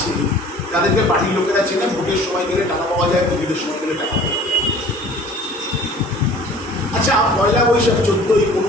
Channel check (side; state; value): both; normal; correlation 0.48